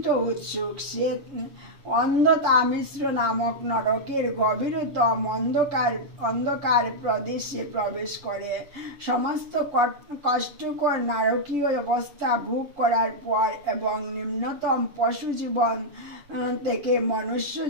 উৎসুক, সে অন্ধতামিশ্র নামক নরকের গভীরতম অন্ধকার প্রদেশে প্রবেশ করে। সমস্ত কষ্টকর নারকীয় অবস্থা ভোগ করার পর এবং নিম্নতম পশু জীবন থেকে মনুষ্য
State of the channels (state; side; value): late; left; 7.4 ms